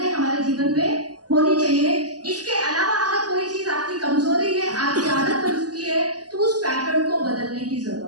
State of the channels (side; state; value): left; late; 0.68 ms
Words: हमारे जीवन में होनी चाहिए। इसके अलावा अगर कोई चीज आपकी कमजोरी है, आपकी आदत बन चुकी है, तो उस पैटर्न को बदलने की